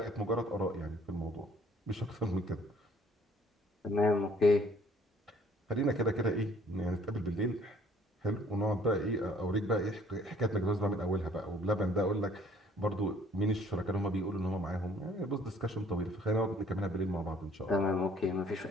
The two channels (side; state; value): both; normal; correlation 0.57